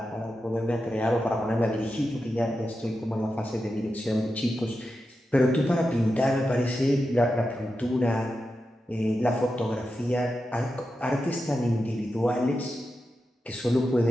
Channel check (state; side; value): normal; both; correlation 0.90